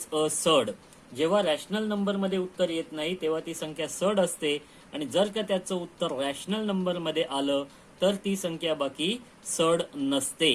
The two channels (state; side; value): identical; both; correlation 1.00